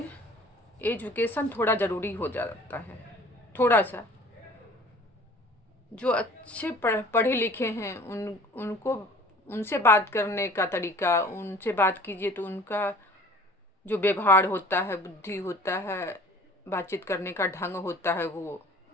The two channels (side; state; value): both; normal; correlation 0.47